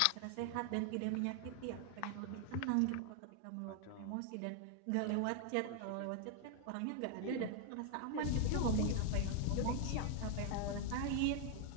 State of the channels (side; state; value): both; different; correlation 0.00